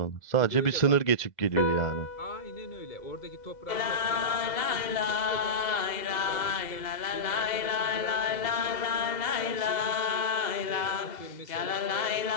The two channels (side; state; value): right; late; 2.1 ms